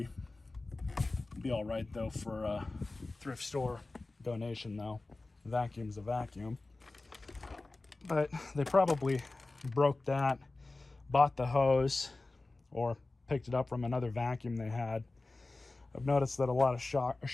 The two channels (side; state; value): right; quieter; 3.2 dB